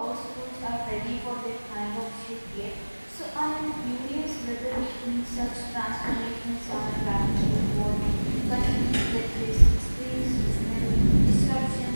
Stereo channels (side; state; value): both; inverted; correlation -1.00